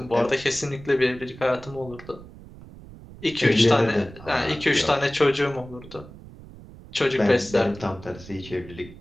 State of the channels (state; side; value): noise; right; rumble, 18 dB below the sound